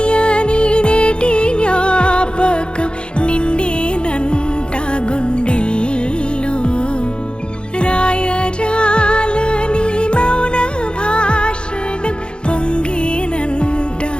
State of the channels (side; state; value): right; late; 0.053 ms